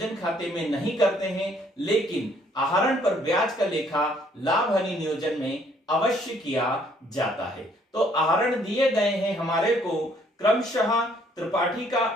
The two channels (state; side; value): normal; both; correlation 0.63